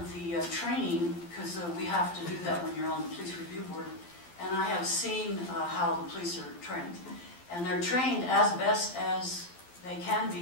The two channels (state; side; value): late; right; 12 ms